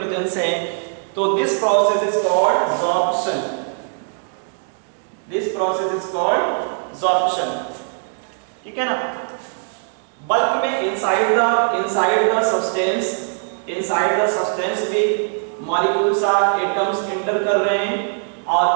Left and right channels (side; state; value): left; silent; 65 dB below the other